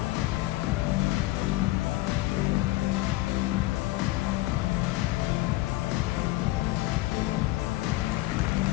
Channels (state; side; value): quieter; right; 18.5 dB